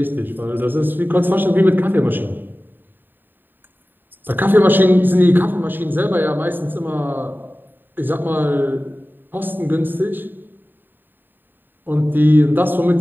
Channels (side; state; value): left; late; 0.093 ms